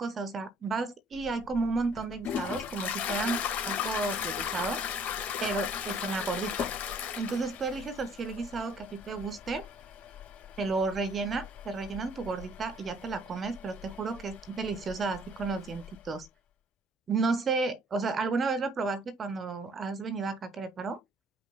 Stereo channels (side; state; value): both; normal; correlation 0.58